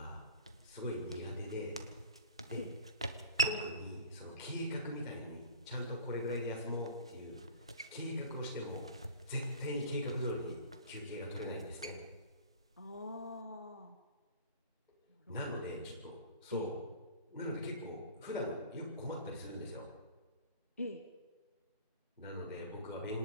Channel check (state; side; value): inverted; both; correlation -0.41